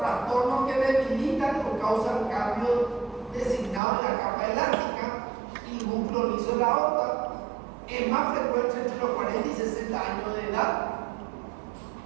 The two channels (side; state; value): left; drops out; at 3.8 s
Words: que debilitan o causan cambios designados en la capa elástica y el músculo liso de la aorta. Es más frecuente entre los 40 y 60 años de edad.